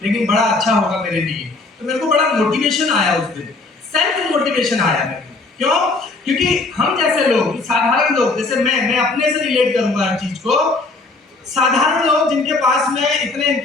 लेकिन बड़ा अच्छा होगा मेरे लिए। तो मेरे को बड़ा मोटिवेशन आया उस दिन, सेल्फ मोटिवेशन आया मेरे को। क्यों? क्योंकि हम जैसे लोग, साधारण लोग, जैसे मैं अपने से रिलेट करूंगा हर चीज को, साधारण लोग जिनके पास में इतने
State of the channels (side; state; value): right; quieter; 3.5 dB